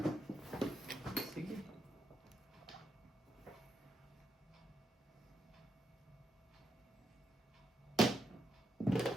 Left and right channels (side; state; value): both; normal; correlation 0.82